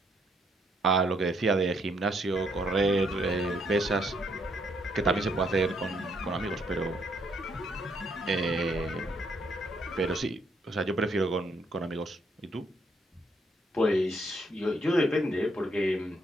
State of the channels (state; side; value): normal; both; correlation 0.72